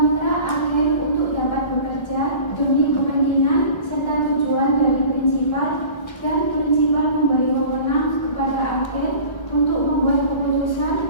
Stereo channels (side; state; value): right; late; 1.2 ms